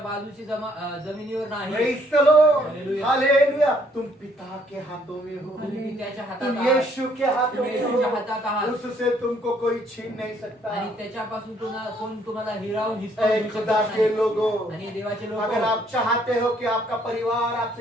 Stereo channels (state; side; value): normal; both; correlation 0.66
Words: बाजूची जमिनीवर नाही Praise the Lord. Hallelujah. Hallelujah. तुम पिता के हाथों में हो, तुम्ही पित्याच्या हातात तुम आहात. यीशु के हाथों तुम्ही में येशूच्या हातात हो, आहात. उससे तुमको कोई छीन नहीं सकता। आणि त्याच्यापासून कोण तुम्हाला हिरावून हिसकावून ऐ घेऊ खुदा शकत के नाही. लोगों, आणि देवाचे लोक अगर आप चाहते हो कि आपका परिवार